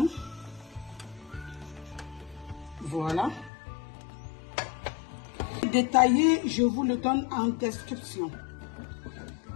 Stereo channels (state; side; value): drops out; right; at 3.5 s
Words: Voilà. Détaillé, je vous le donne en description.